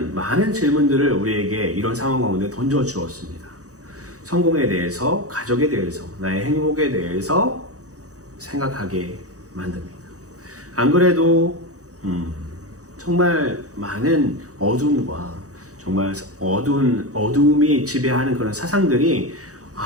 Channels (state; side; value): late; left; 0.66 ms